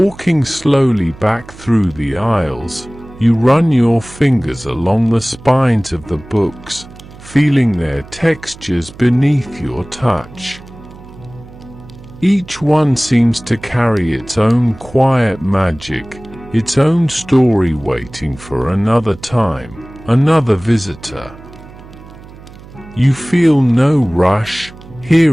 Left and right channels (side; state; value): right; noise; hum, 19 dB below the sound